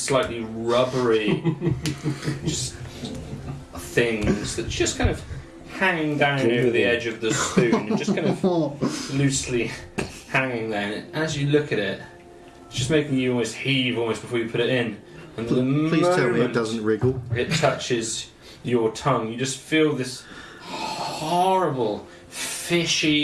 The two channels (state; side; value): identical; both; correlation 1.00